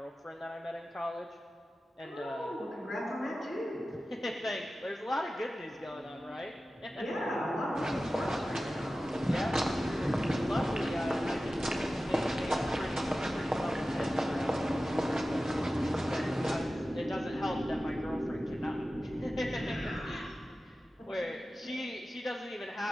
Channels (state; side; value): normal; both; correlation 0.95